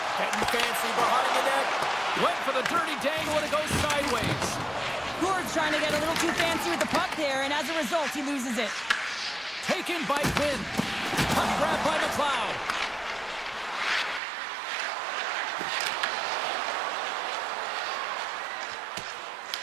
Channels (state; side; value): drops out; left; at 14.2 s